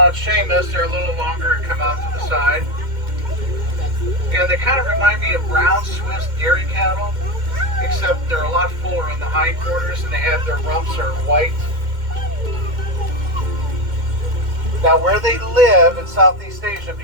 Seamus, they're a little longer and come out to the side. And they kind of remind me of brown Swiss dairy cattle, except they're a lot fuller in the hindquarters and they have their rumps are white. Now where they live in Southeast Asia,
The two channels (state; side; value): late; left; 2.1 ms